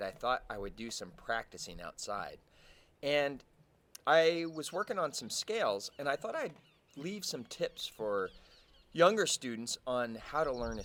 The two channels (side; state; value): both; identical; correlation 1.00